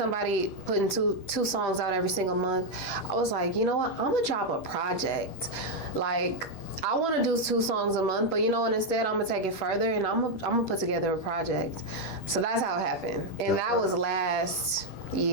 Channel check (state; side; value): late; right; 16 ms